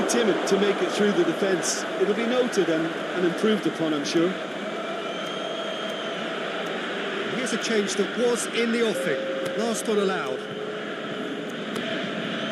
timid to make it through the defence. It'll be noted and improved upon, I'm sure. Here's a change that was in the offing. Last one allowed.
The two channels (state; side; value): identical; both; correlation 1.00